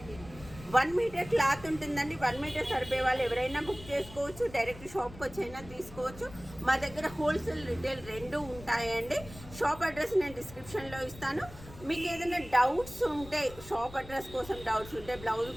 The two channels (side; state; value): left; noise; rumble, 17 dB below the sound